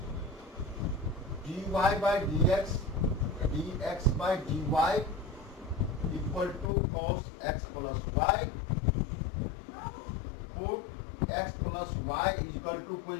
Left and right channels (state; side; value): drops out; right; at 6.7 s